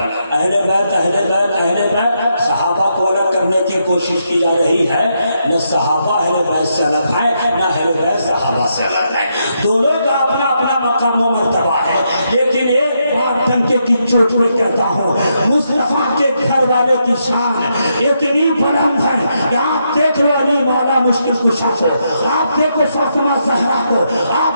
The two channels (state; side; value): inverted; both; correlation -0.80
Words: اہل بیت صحابہ کو الگ کرنے کی کوشش کی جا رہی ہے۔ نہ صحابہ اہل بیت سے الگ ہے، نہ اہل بیت صحابہ سے الگ ہے، دونوں کا اپنا اپنا مقام و مرتبہ ہے۔ لیکن ایک بات ڈنکے کی چوٹ پہ کہتا ہوں، مصطفیٰ کے گھر والے کی شان اتنی بلند ہے کہ آپ دیکھ لو علی مولا مشکل کشا کو، آپ دیکھو فاطمہ زہرا کو،